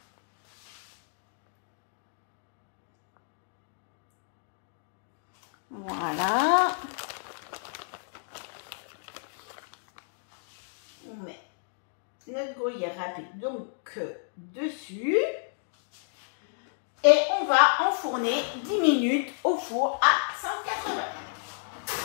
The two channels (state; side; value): silent; right; digital silence